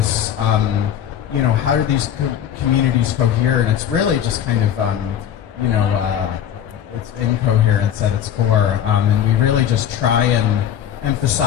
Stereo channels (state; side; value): quieter; right; 9.9 dB